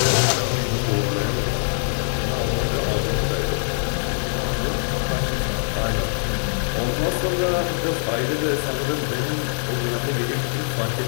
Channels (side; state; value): right; silent; digital silence